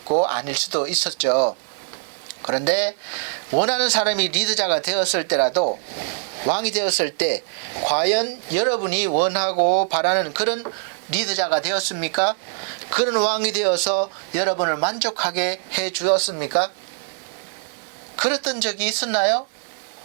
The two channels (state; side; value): silent; left; 56 dB below the other